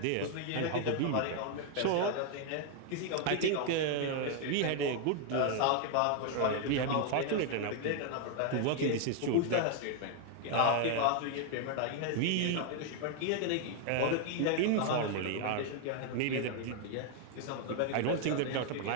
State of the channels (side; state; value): both; different; correlation 0.00